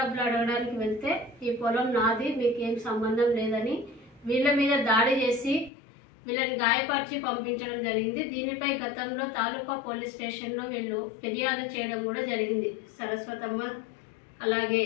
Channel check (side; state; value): right; drops out; at 5.7 s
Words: అడగడానికి వెళ్తే ఈ పొలం నాది, మీకేం సంబంధం లేదని వీళ్ళ మీద దాడి చేసి వీళ్ళని గాయపరిచి పంపించడం జరిగింది. దీనిపై గతంలో తాలూకా పోలీస్ స్టేషన్లో వీళ్ళు ఫిర్యాదు చేయడం కూడా జరిగింది, సరస్వతమ్మ అలాగే